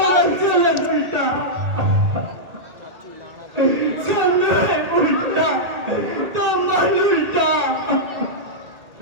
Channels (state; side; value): late; left; 2.2 ms